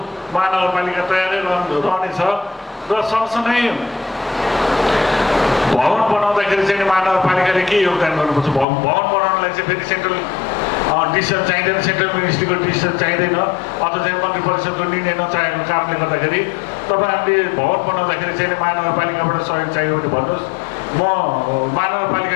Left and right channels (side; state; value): right; drops out; at 8.7 s